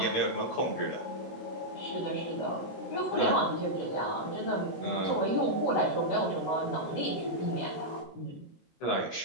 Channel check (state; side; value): late; right; 19 ms